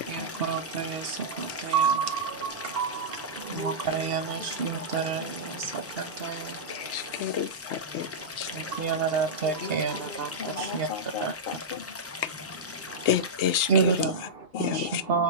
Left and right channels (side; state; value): both; normal; correlation -0.10